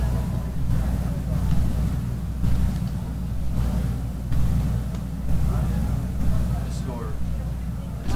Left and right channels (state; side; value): identical; both; correlation 1.00